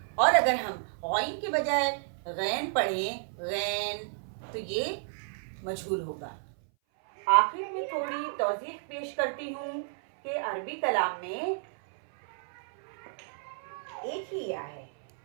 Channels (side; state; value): left; silent; 57 dB below the other